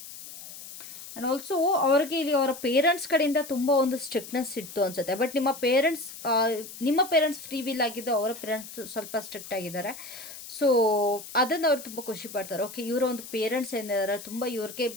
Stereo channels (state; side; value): noise; left; hiss, 13 dB below the sound